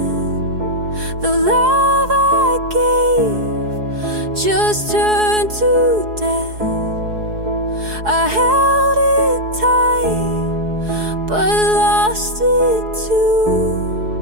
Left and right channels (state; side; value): late; left; 4.7 ms